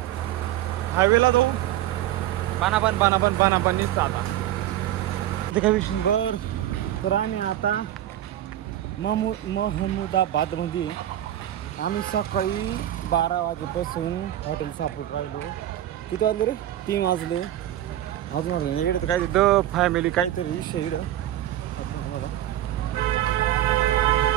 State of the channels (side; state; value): left; quieter; 12.9 dB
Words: हायवेला जाऊन पानापण निघतं आता ते काय विषय. बर तर आम्ही आता महमुदाबादमध्ये आम्ही सकाळी 12 वाजेपासून हॉटेल सापडून राहिलो. किती वाजले रे? 3 वाजले. अजून वाटलं इकडे तर काय द फॅमिली काहीतरी विषय इकडं तुम्हाला